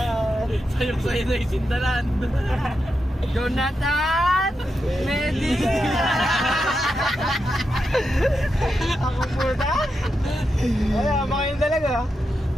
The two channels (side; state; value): both; normal; correlation 0.87